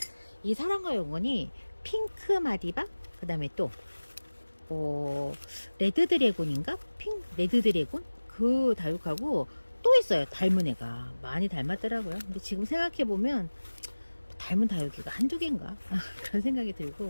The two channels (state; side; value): inverted; both; correlation -1.00